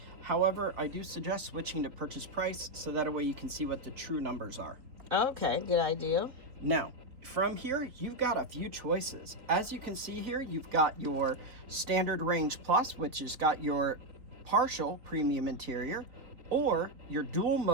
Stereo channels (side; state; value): left; late; 3.6 ms